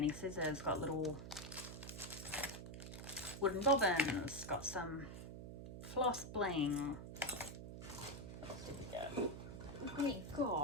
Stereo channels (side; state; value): right; noise; hum, 9 dB below the sound